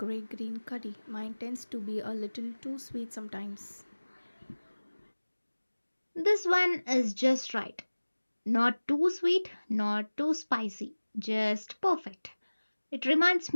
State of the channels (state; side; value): inverted; both; correlation -1.00